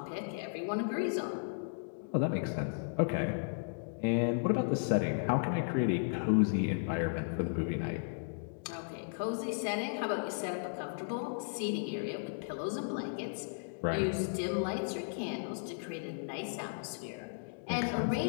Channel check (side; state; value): right; silent; digital silence